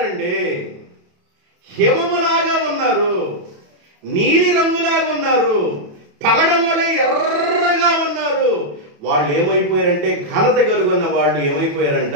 హిమములాగా ఉన్నారు, నీలి రంగులాగా ఉన్నారు, పగడం వలె ఎర్రగా ఉన్నారు. వాళ్ళు ఏమైపోయారంటే ఘనత కలుగున్న వాళ్ళు ఏమైపోయారంట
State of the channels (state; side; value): late; left; 28 ms